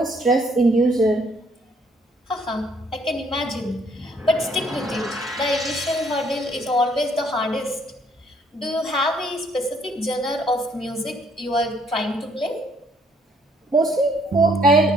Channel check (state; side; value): normal; both; correlation 0.65